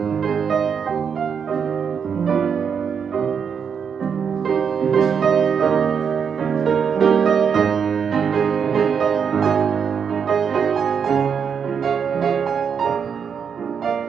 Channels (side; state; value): left; quieter; 6.9 dB